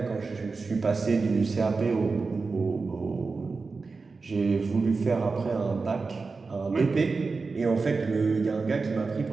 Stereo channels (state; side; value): quieter; left; 4.3 dB